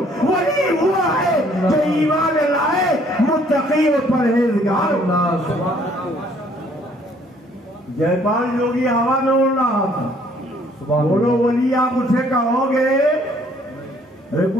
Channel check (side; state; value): both; normal; correlation 0.62